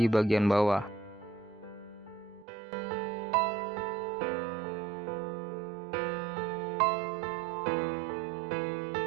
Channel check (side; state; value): left; drops out; at 2.5 s